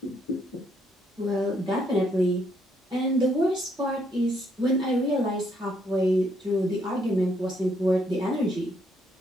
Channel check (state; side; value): normal; both; correlation 0.71